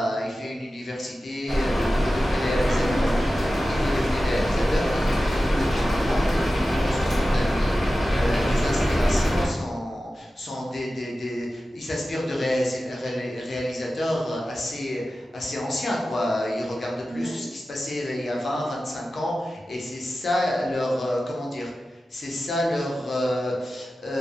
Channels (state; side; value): normal; both; correlation 0.94